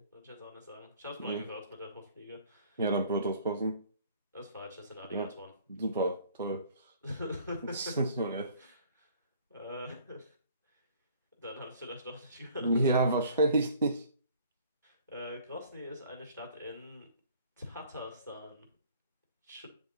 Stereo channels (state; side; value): inverted; both; correlation -0.55